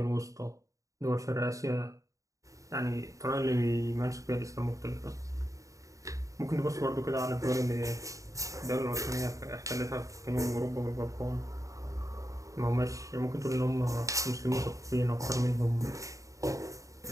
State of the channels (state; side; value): late; left; 0.16 ms